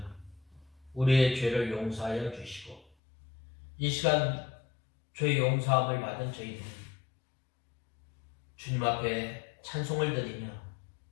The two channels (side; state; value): right; drops out; at 2.9 s